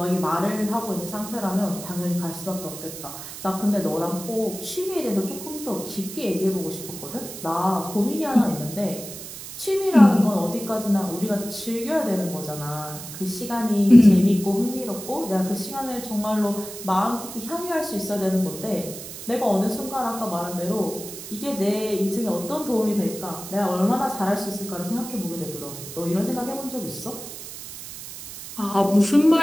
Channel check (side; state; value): right; noise; hiss, 11 dB below the sound